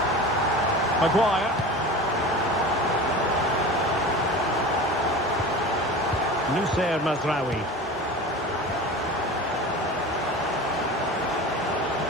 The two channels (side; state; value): both; normal; correlation 0.33